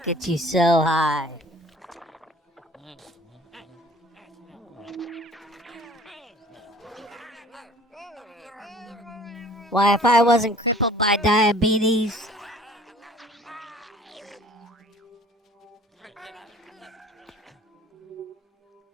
gets you so high. Why, if I wasn't crippled by diabetes...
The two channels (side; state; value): both; normal; correlation 0.50